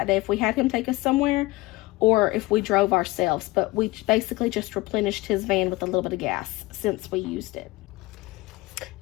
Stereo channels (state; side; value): quieter; right; 20.8 dB